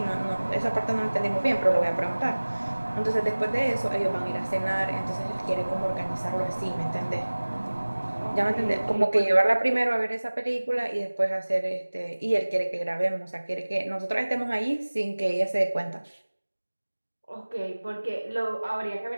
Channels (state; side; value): inverted; both; correlation -1.00